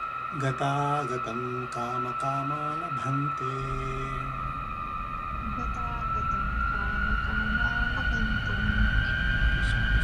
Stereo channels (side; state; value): both; identical; correlation 1.00